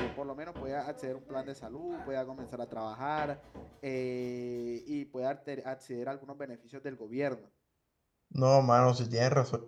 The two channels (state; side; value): identical; both; correlation 1.00